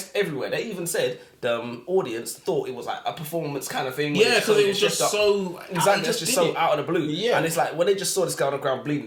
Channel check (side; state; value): both; identical; correlation 1.00